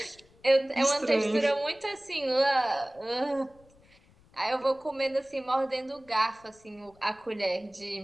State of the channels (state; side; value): noise; left; rumble, 30 dB below the sound